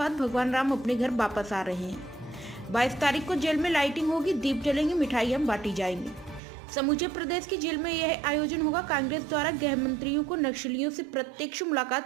भगवान राम अपने घर वापस आ रहे हैं। 22 तारीख को जेल में लाइटिंग होगी, दीप जलेंगे, मिठाइयां बांटी जाएंगी। समूचे प्रदेश की जेल में यह आयोजन होगा। कांग्रेस द्वारा गृह मंत्रियों को नक्सलियों से प्रत्यक्ष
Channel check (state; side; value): drops out; left; at 6.4 s